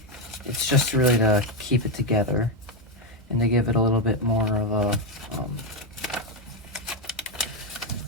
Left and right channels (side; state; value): both; normal; correlation 0.07